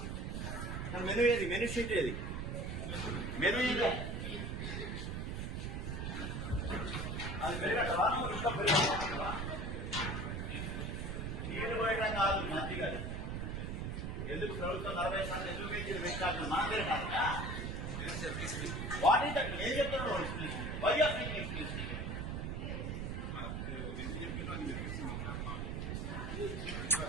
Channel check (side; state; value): right; noise; rumble, 3 dB below the sound